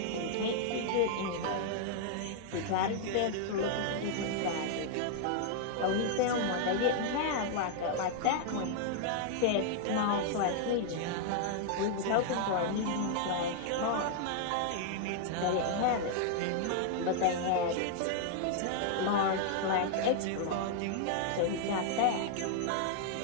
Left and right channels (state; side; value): different; both; correlation -0.01